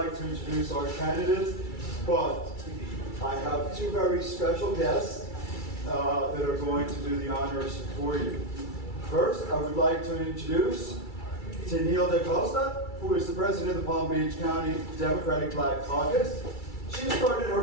to introduce our candidates, but I have two very special guests that are going to do the honors for you. First, I would like to introduce Tennille DaCosta, who is the president of the Palm Beach County Democratic Black Caucus. She started her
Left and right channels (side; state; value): right; late; 2.3 ms